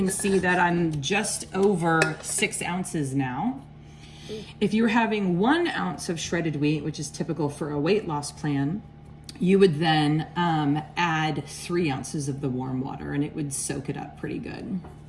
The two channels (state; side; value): identical; both; correlation 1.00